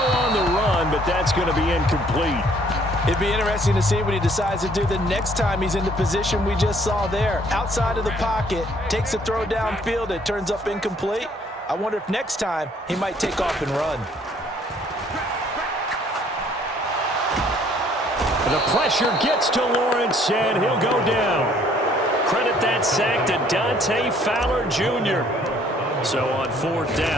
the run, but that's going to be incomplete. It'd be interesting to see what he decides to do the next time he's in the position we just saw there. Outside of the pocket, takes a throw downfield, it turns up incomplete. I wonder if next time he might take off and run. The pressure gets to Lawrence, and he'll go down. Credit that sack to Dante Fowler Jr. So on 4th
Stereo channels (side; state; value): both; normal; correlation 0.61